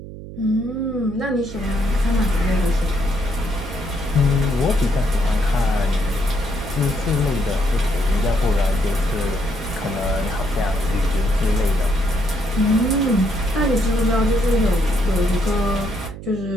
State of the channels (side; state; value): right; noise; hum, 12 dB below the sound